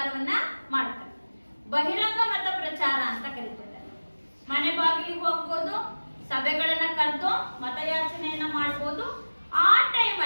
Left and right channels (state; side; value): inverted; both; correlation -1.00